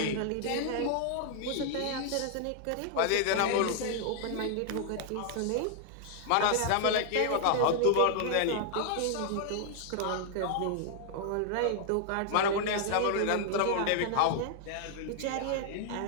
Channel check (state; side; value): different; both; correlation 0.00